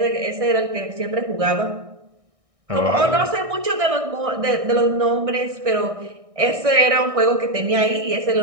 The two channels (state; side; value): late; left; 1.6 ms